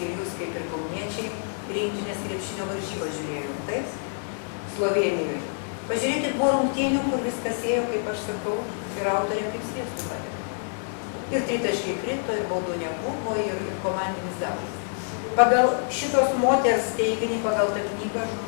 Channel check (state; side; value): silent; right; digital silence